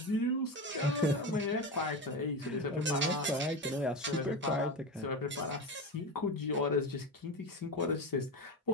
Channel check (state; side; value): normal; both; correlation 0.21